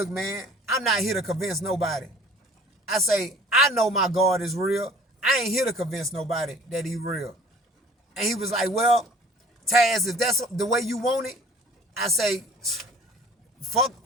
man, I'm not here to convince nobody. I say, I know my God is real. I ain't here to convince nobody that he real. And he was like, well, Taz, if that's the way you want it, I say, fuck,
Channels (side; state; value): both; normal; correlation 0.49